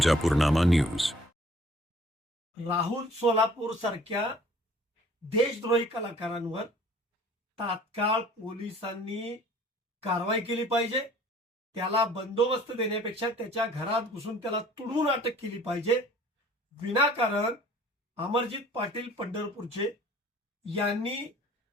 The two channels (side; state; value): both; normal; correlation 0.52